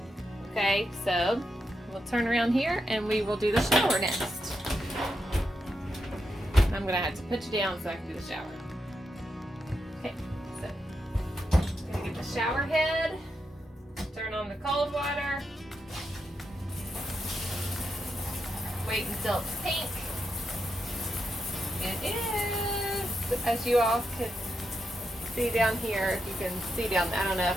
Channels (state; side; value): normal; both; correlation 0.85